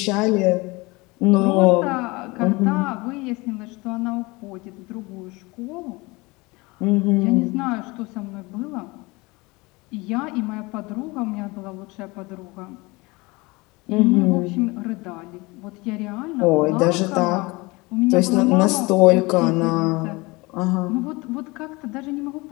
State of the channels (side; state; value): right; quieter; 24.2 dB